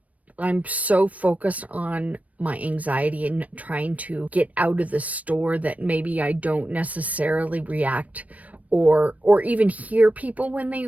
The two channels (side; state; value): left; late; 0.069 ms